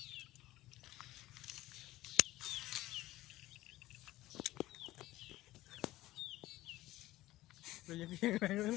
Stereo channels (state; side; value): quieter; right; 16.6 dB